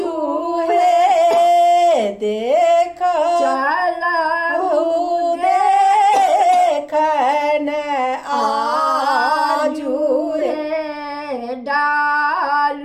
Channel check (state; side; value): identical; both; correlation 1.00